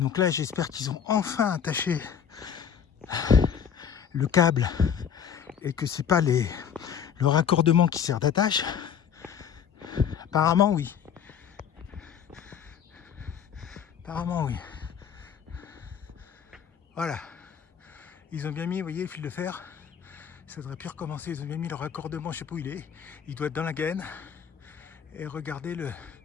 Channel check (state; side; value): quieter; right; 7.8 dB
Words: là, j'espère qu'ils ont enfin attaché le câble et que c'est pas le raccordement qui sert d'attache. Apparemment, oui. Apparemment, oui. Voilà. Ils ont bien mis, vous voyez, le fil de fer. Ça devrait plus recommencer. Ils ont bien mis le raccordement, je sais pas où il est. Il doit être dans la gaine. Et regardez